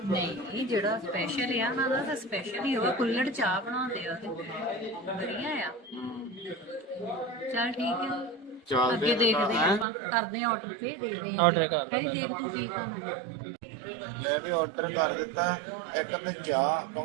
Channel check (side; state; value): left; drops out; at 9.9 s